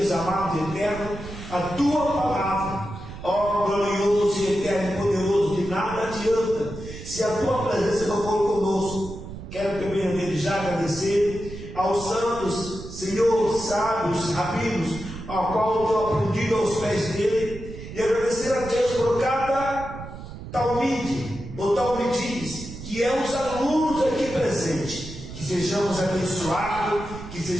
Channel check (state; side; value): noise; right; rumble, 12 dB below the sound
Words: amado e eterno, a tua palavra. Ó glorioso e eterno e poderoso, de nada adianta se a tua presença não for conosco. Quero também desde já agradecer aos santos, Senhor, sábios, rabinos, ao qual eu tenho aprendido aos pés dele, e agradecer a Deus por cada talmide ou talmides, que é os alunos aqui presentes. Que sejamos abençoados, que